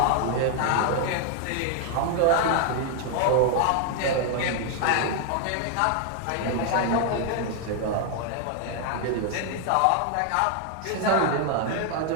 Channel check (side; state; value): both; different; correlation 0.00